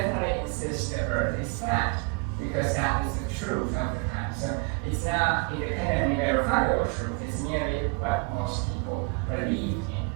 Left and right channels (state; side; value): quieter; left; 29.2 dB